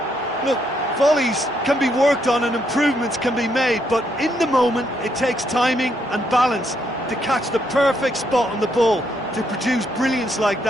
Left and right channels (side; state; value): both; normal; correlation 0.75